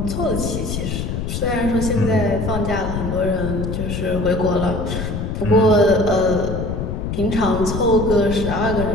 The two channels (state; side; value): noise; left; rumble, 4 dB below the sound